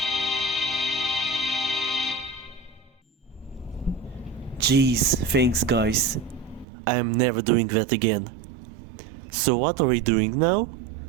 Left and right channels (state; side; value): drops out; left; at 6.7 s